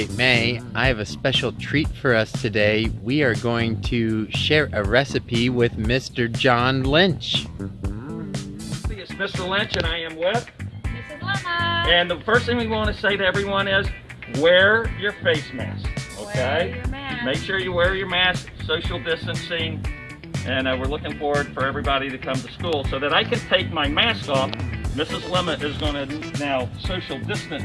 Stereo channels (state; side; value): identical; both; correlation 1.00